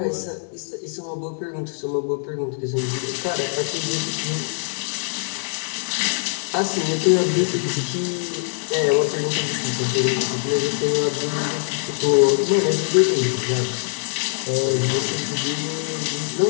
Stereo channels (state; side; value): silent; right; digital silence